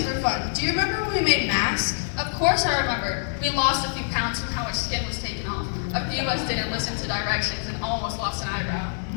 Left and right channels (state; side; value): silent; right; digital silence